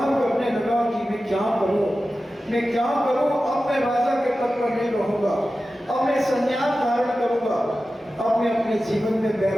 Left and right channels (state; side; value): normal; both; correlation 0.94